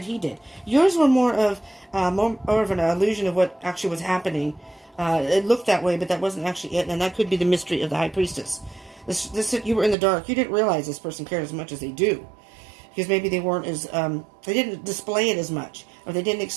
he did. Yours were more of an illusion of what actually was happening. It looked that way, but that wasn't actually it, and that could be the mystery of the High Priestess. You were in the dark. You didn't realize this person cared as much as they do, because maybe they weren't as they didn't display it as much, or they didn't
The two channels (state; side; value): drops out; left; at 10.0 s